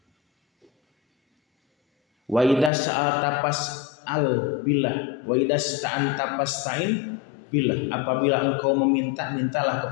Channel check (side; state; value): right; drops out; at 2.7 s